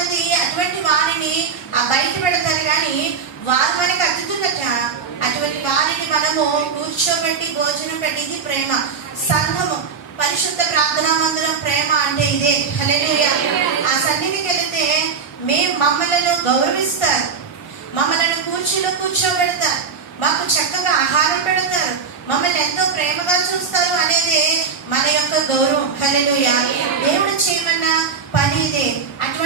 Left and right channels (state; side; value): quieter; left; 5.8 dB